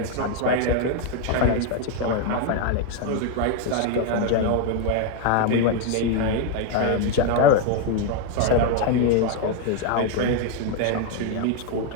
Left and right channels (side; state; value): both; different; correlation 0.01